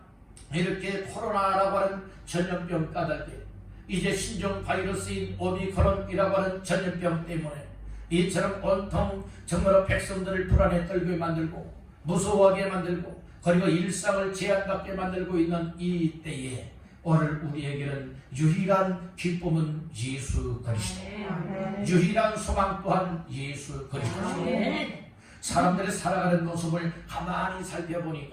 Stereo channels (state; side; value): identical; both; correlation 1.00